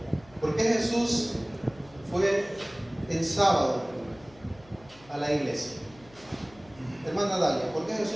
¿Por qué Jesús fue en sábado a la iglesia? Hermana Dalia, ¿por qué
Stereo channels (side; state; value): left; noise; hum, 25 dB below the sound